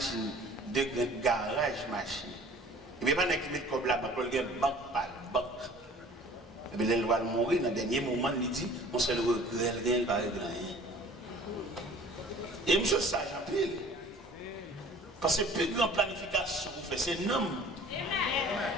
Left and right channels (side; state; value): both; normal; correlation 0.49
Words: deux garages machines. Et puis pas qui met comme là, il y a une banque par banque. Et puis il va mourir, dans le dernier moment, il dit, on seul regret, il va régler rien. Et monsieur sage en pile. Parce que plus grande planification vous faites, c'est non.